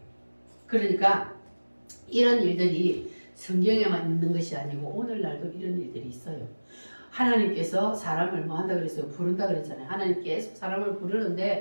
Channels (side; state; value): both; inverted; correlation -1.00